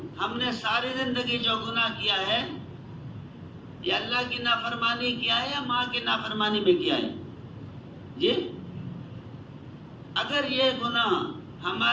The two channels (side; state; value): both; identical; correlation 1.00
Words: ہم نے ساری زندگی جو گناہ کیا ہے یہ اللہ کی نافرمانی کیا ہے یا ماں کی نافرمانی میں کیا ہے؟ جی اگر یہ گناہ